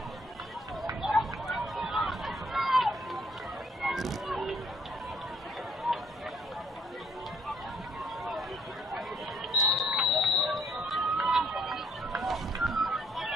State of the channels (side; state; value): both; normal; correlation 0.66